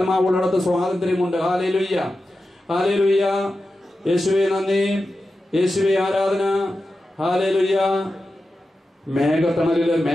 സ്വാതന്ത്ര്യമുണ്ട്. Hallelujah, hallelujah. യേശുവേ നന്ദി, യേശുവേ ആരാധന. ഹല്ലേലൂയ. മേഘത്തണലില്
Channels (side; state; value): both; normal; correlation 0.92